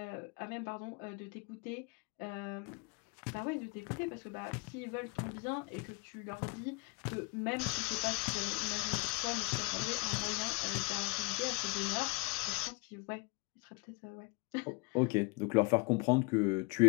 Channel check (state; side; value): quieter; right; 24.5 dB